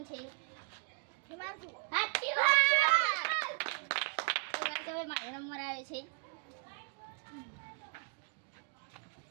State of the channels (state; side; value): quieter; left; 37.6 dB